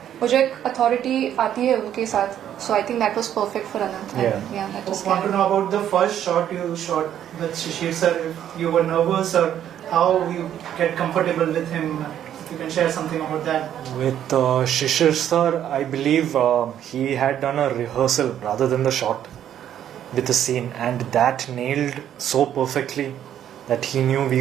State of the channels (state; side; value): quieter; left; 10.4 dB